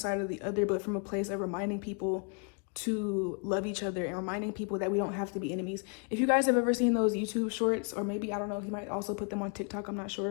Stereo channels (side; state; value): right; quieter; 39.7 dB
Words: or the other, but from a place of reminding people to love each other and reminding people that we don't have to be enemies. If you guys have ever seen those YouTube shorts, or maybe, I don't know, he might also put them on TikTok, I'm not